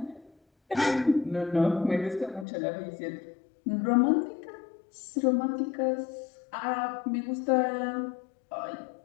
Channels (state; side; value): drops out; right; at 2.5 s